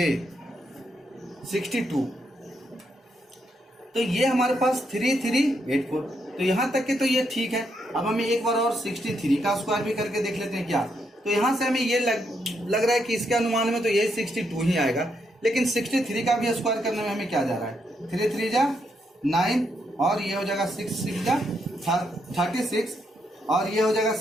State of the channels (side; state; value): both; normal; correlation 0.78